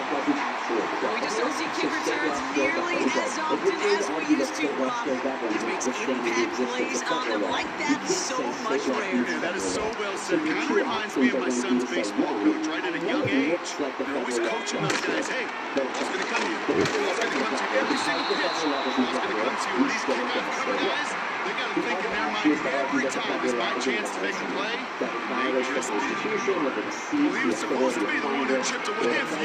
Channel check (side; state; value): both; identical; correlation 1.00